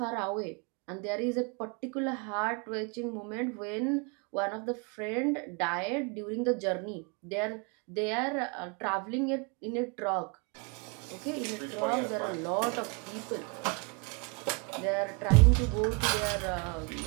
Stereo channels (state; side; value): quieter; left; 32.1 dB